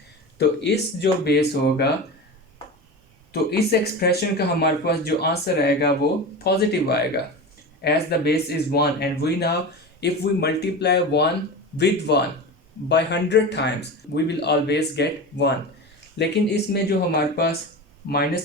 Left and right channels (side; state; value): both; normal; correlation 0.27